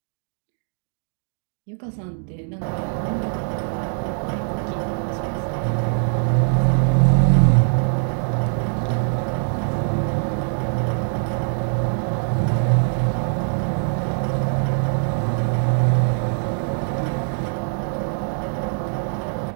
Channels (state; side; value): silent; left; 55 dB below the other